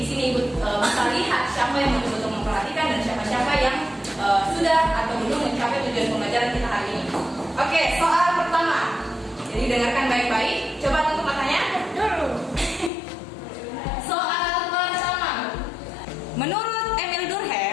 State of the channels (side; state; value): right; drops out; at 12.9 s